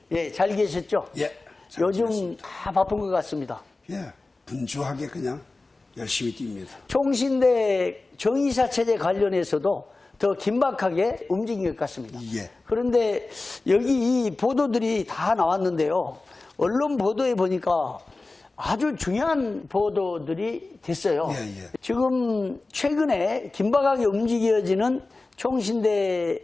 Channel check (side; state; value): right; quieter; 3.4 dB